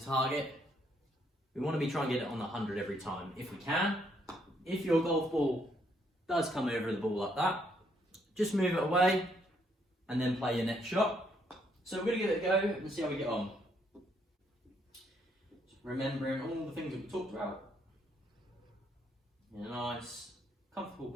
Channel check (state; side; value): normal; both; correlation 0.72